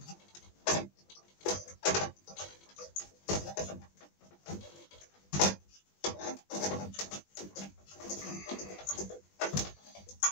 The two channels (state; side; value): late; right; 20 ms